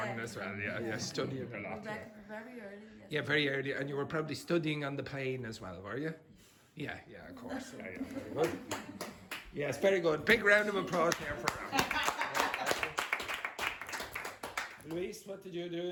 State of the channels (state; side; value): identical; both; correlation 1.00